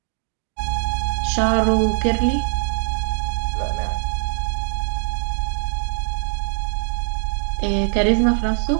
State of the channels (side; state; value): left; silent; digital silence